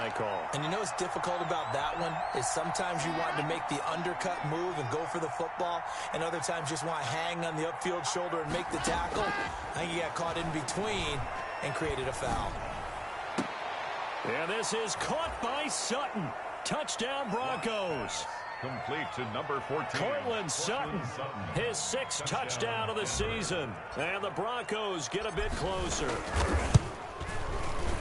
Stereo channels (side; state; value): both; identical; correlation 1.00